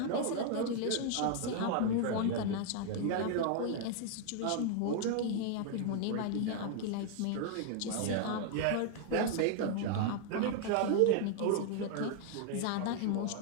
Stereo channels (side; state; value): both; different; correlation 0.00